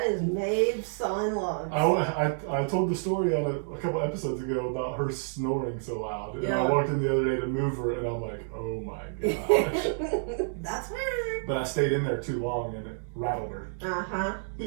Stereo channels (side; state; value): left; silent; digital silence